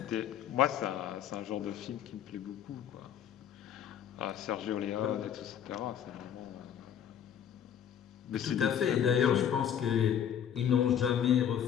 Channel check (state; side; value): quieter; right; 9.3 dB